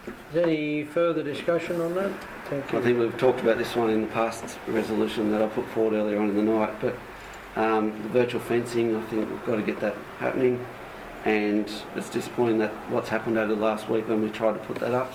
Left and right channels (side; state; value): both; identical; correlation 1.00